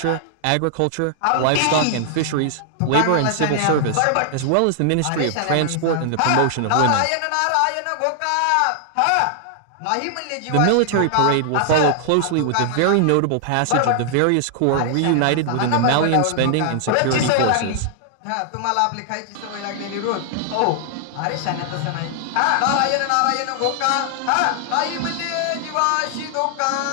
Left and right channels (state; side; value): different; both; correlation 0.00